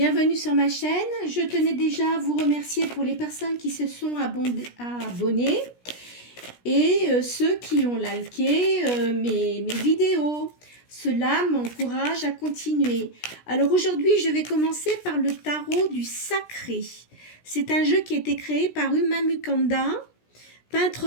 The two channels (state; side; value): late; right; 17 ms